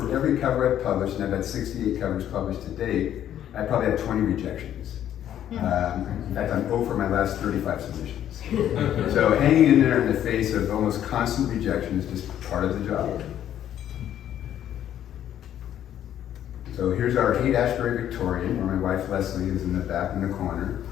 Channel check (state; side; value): quieter; right; 10.9 dB